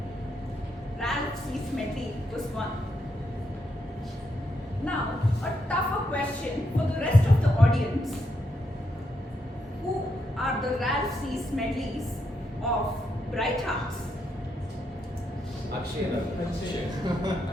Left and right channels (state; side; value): normal; both; correlation 0.81